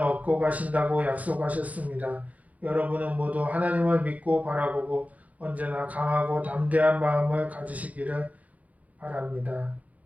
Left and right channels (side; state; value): left; late; 0.072 ms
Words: 가신다고 약속하셨습니다. 여러분은 모두 하나님을 믿고 바라보고 언제나 강하고 담대한 마음을 가지시기를 바랍니다.